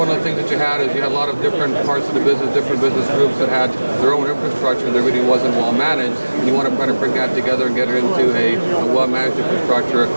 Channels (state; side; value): inverted; both; correlation -1.00